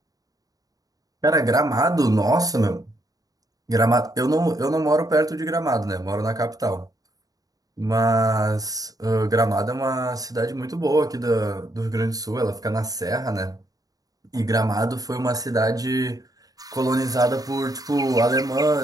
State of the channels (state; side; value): late; left; 0.18 ms